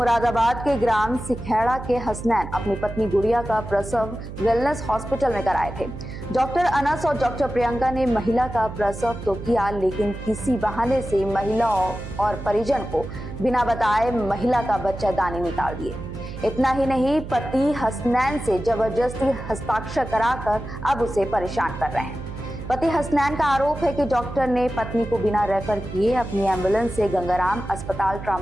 के ग्राम सिखेड़ा के हसनैन अपनी पत्नी गुड़िया का प्रसव वेलनेस हॉस्पिटल में कराए थे। डॉक्टर अनस और डॉक्टर प्रियंका ने महिला का प्रसव तो किया, लेकिन किसी बहाने से महिला और परिजन को बिना बताए महिला का बच्चादानी निकाल दिए। इतना ही नहीं, पति हसनैन से जबरदस्ती हस्ताक्षर कराकर अब उसे परेशान कर रहे हैं। पति हसनैन का आरोप है कि डॉक्टर ने पत्नी को बिना रेफर किए अपनी एम्बुलेंस से गंगाराम अस्पताल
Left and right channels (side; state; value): right; noise; hum, 10 dB below the sound